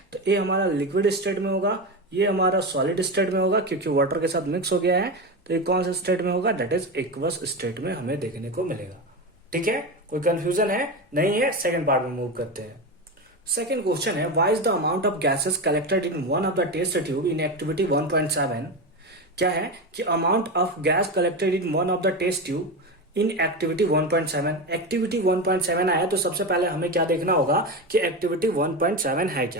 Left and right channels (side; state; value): both; normal; correlation 0.19